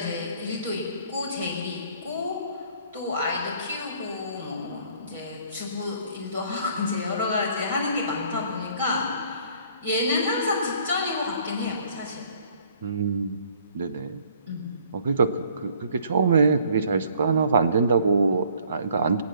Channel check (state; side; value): inverted; both; correlation -0.59